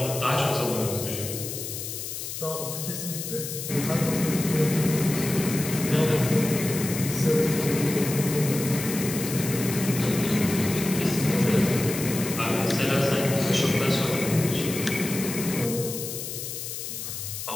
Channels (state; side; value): noise; left; hiss, 7 dB below the sound